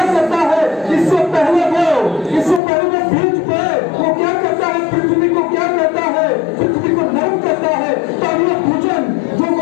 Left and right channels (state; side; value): drops out; right; at 2.6 s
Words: करता है, इससे पहले वो बीज पे वो क्या करता है, पृथ्वी को क्या करता है, पृथ्वी को नरम करता है ताकि ये भोजन जो